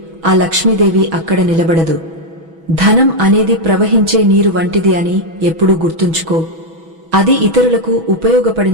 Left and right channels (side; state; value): left; late; 6.1 ms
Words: ఆ లక్ష్మీదేవి అక్కడ నిలబడదు. ధనం అనేది ప్రవహించే నీరు వంటిది అని ఎప్పుడూ గుర్తుంచుకో. అది ఇతరులకు